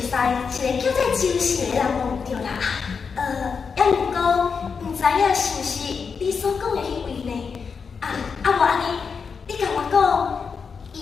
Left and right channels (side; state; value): right; quieter; 5.7 dB